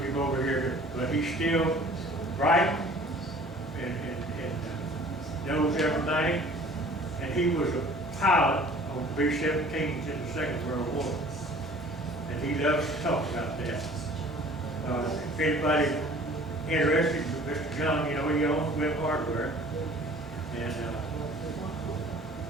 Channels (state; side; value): normal; both; correlation 0.49